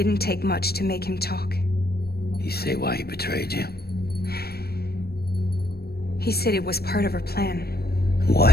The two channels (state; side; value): late; right; 0.46 ms